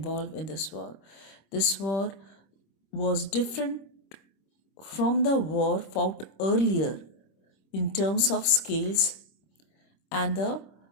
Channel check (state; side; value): late; right; 25 ms